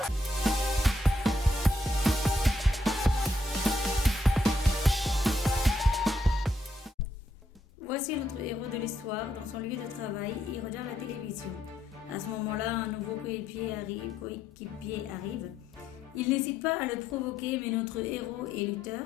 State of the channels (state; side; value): normal; both; correlation 0.76